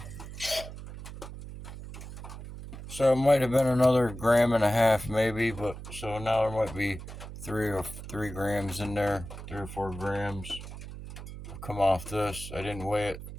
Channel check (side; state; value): right; noise; hum, 11 dB below the sound